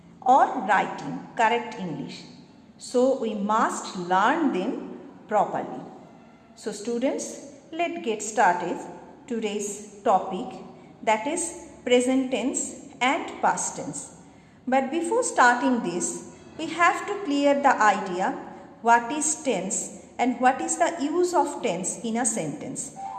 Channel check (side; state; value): both; identical; correlation 1.00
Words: or writing correct English. So we must learn them properly. So students, let's get started today's topic, that is present tense and past tense. But before starting this, we have to clear the idea what is tense and what is the use of tense in a sentence.